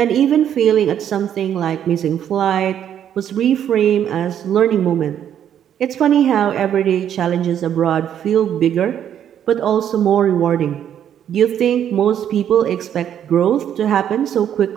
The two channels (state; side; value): quieter; left; 9.7 dB